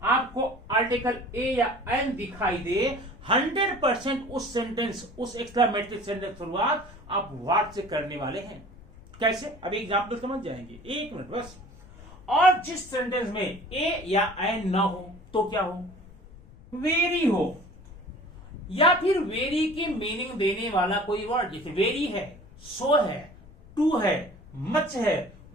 आपको आर्टिकल ए या एन दिखाई दे, 100% उस सेंटेंस, उस एक्सक्लेमेटरी सेंटेंस शुरुआत आप व्हाट से करने वाले हैं। कैसे, अभी एग्जाम्पल समझ जाएंगे, एक मिनट बस। और जिस सेंटेंस में ए या एन ना हो तो क्या हो, वेरी हो, या फिर वेरी की मीनिंग देने वाला कोई वर्ड, जैसे वेरी है, सो है, टू है, मच है,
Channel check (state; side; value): noise; left; rumble, 20 dB below the sound